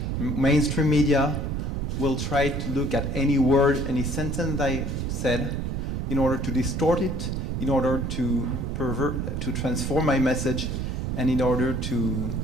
mainstream media will try to look at any word, any sentence I said, in order to distort it, in order to transform my message, and in order to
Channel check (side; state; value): right; noise; rumble, 2 dB below the sound